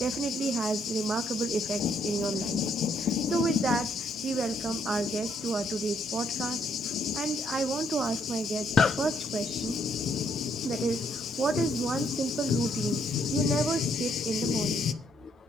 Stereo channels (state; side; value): normal; both; correlation 0.71